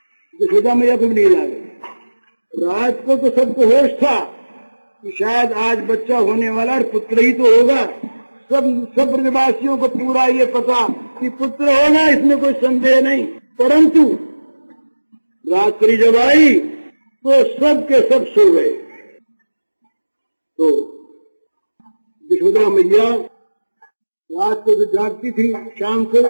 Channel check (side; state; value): both; inverted; correlation -1.00